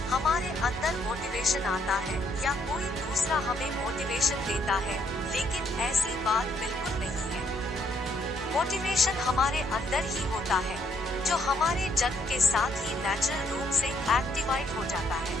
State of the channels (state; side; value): normal; both; correlation 0.70